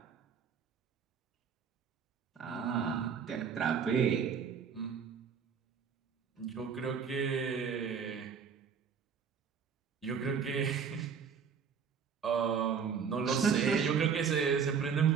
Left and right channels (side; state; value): left; quieter; 6.6 dB